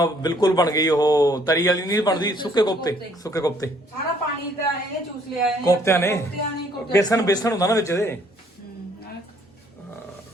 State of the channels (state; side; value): normal; both; correlation 0.63